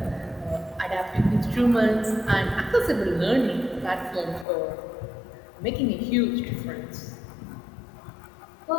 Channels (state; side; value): drops out; right; at 4.5 s